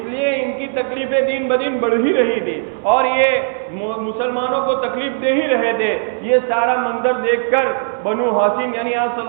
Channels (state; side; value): silent; left; 64 dB below the other